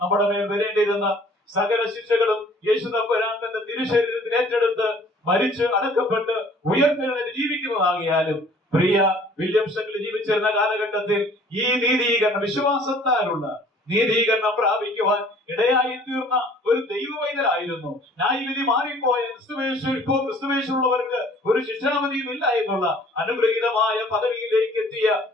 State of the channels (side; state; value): both; normal; correlation 0.53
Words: നമ്മുടെ മേൽ വരേണ്ടിയിരുന്ന സകല ശിക്ഷകളും യേശു തമ്പുരാൻ തന്റെ തിരുശരീരത്തിൽ ഏറ്റെടുത്ത് മരിച്ച് അടക്കപ്പെട്ട് ഉയർത്തെഴുന്നേറ്റ് ജീവിക്കുന്നതാകിയാലും പ്രിയ വില്യംസ് അങ്കിൾ ജീവിച്ചിരുന്ന കാലഘട്ടത്തിൽ ഈ നീതീകരണം, വിശ്വാസത്താലുള്ള നീതീകരണം പ്രാപിക്കുവാൻ ഇടയായി തീർന്ന ഒരു ദൈവവൈദ്യരായിരുന്നു. ന്യായവിധി മാറിപ്പോയ ക്രിസ്തുവേശുള്ളവർക്ക് ഒരു ശിക്ഷാവിധിയും ഇല്ല എന്നുള്ള അനുഗ്രഹീതമായ പദവിയിലേക്ക് എത്തിയ